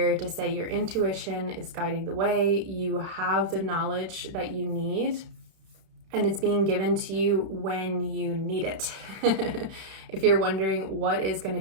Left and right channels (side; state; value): left; late; 31 ms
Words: to say your intuition is guiding the way. You have the knowledge that you need, and it's being given to you when you need it. If you're wondering what is going to